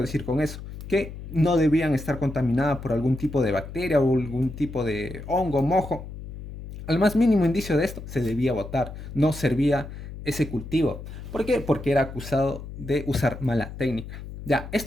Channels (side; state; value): left; noise; hum, 11 dB below the sound